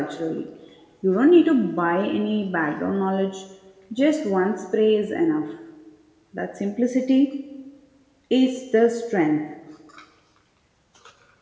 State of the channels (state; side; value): identical; both; correlation 1.00